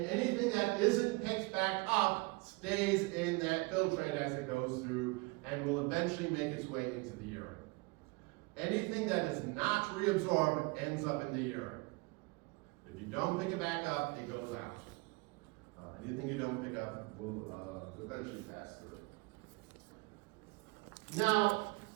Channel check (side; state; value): left; quieter; 26.7 dB